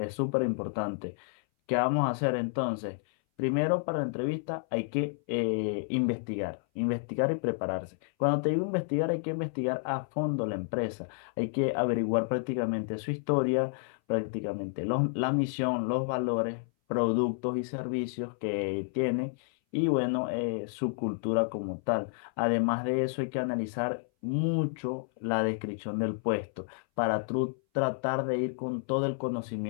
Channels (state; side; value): silent; right; 58 dB below the other